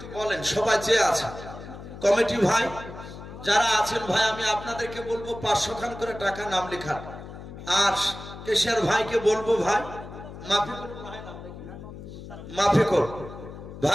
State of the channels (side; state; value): left; noise; hum, 13 dB below the sound